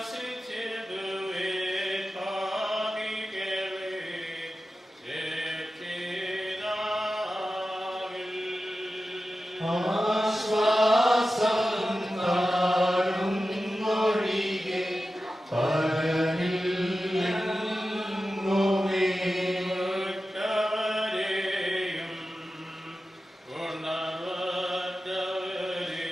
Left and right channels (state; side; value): normal; both; correlation 0.93